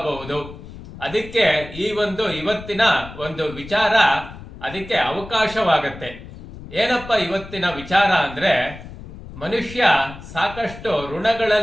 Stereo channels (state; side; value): noise; left; rumble, 15 dB below the sound